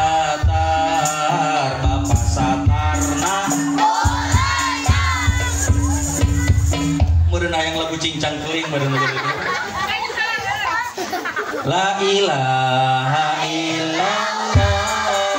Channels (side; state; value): both; identical; correlation 1.00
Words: Bapak Satarna. Meureun hayang lagu cincang keling meureun La ilaha illallah,